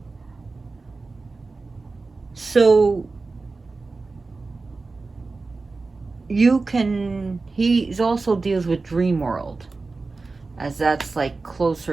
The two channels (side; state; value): left; quieter; 3.8 dB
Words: So, he also deals with dream world, as that's like